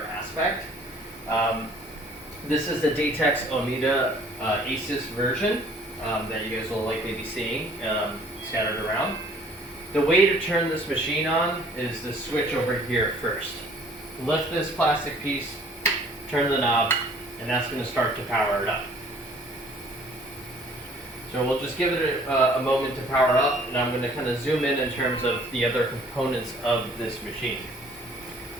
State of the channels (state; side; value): normal; both; correlation 0.56